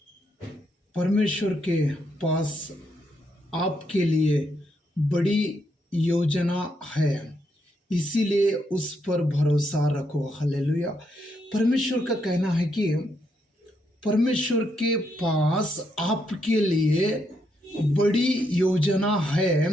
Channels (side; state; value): both; normal; correlation 0.78